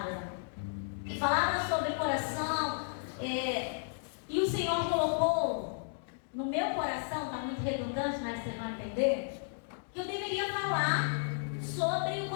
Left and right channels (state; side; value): silent; right; digital silence